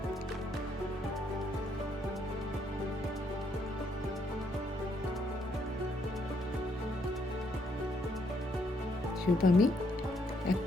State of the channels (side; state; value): both; normal; correlation 0.73